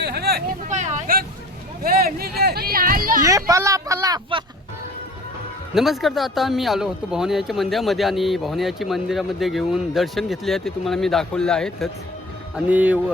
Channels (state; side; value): normal; both; correlation 0.44